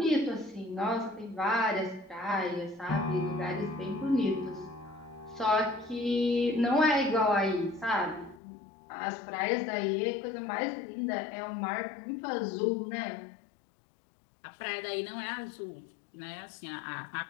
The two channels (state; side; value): drops out; right; at 8.4 s